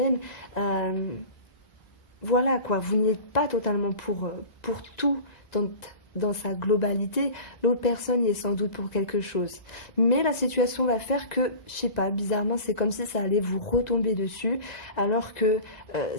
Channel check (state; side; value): late; right; 1.9 ms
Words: Voilà quoi, vous n'y êtes pas totalement pour tout dans sa globalité. L'autre personne y est sans doute pour quelque chose. Mais la situation va faire que, je sais pas, bizarrement, c'est comme si ça allait vous retomber dessus, alors que